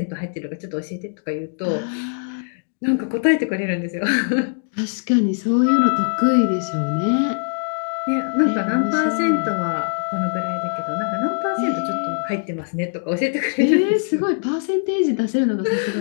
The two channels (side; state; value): right; silent; digital silence